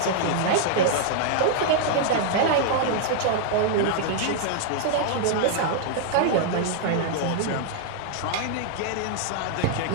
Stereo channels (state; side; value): different; both; correlation -0.01